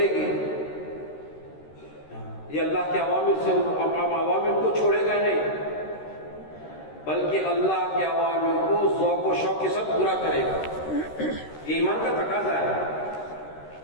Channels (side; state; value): right; late; 13 ms